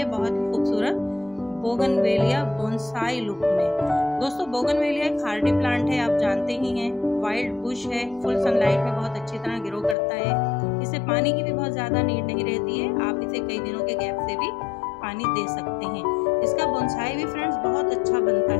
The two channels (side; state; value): right; drops out; at 10.0 s